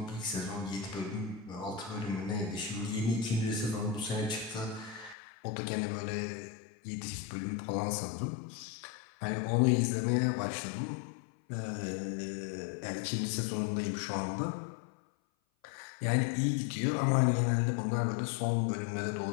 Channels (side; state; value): right; drops out; at 5.2 s